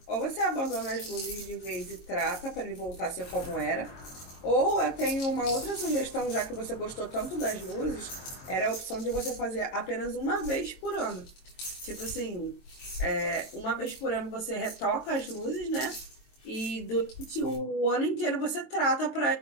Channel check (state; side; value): late; right; 23 ms